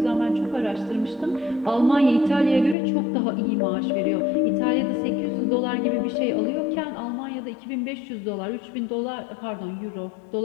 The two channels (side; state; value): right; drops out; at 2.8 s